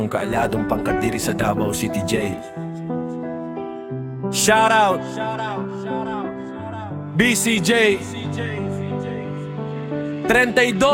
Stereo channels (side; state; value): both; identical; correlation 1.00